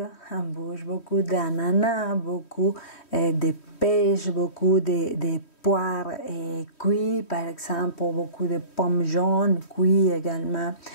en bouche, beaucoup d'ananas, beaucoup de pêche, beaucoup de poires cuits, par exemple, beaucoup de pommes jaunes cuits également.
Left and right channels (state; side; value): late; right; 3.1 ms